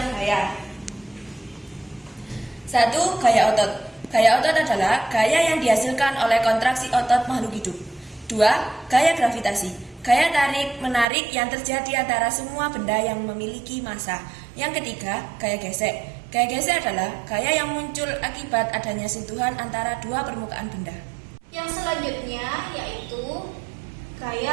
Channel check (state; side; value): drops out; left; at 11.1 s